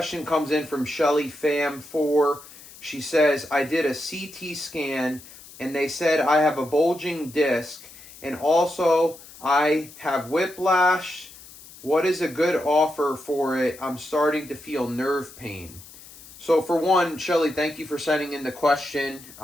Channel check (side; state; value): left; noise; hiss, 19 dB below the sound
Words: comes in from Shelly Fam4. She says, I did a CT scan and they said I have a bulging disc and also I have whiplash. What is a good offer for it? I'm starting to feel nerve pain. So for one, Shelly, thank you for sending in the question.